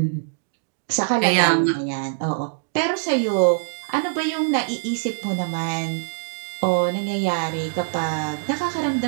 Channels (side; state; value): left; silent; digital silence